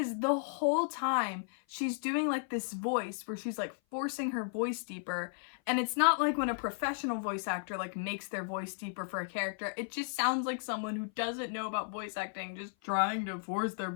the whole time she's doing like this voice where she's like forcing her voice deeper, and it's not like when a professional voice actor like makes their voice deeper for a character. It just sounds like someone who doesn't know about voice acting just trying to force their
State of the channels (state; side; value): silent; right; 55 dB below the other